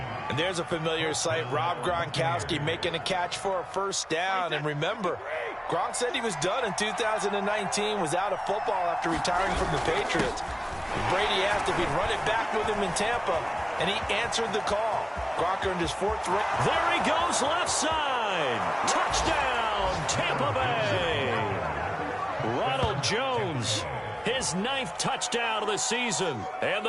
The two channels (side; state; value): both; identical; correlation 1.00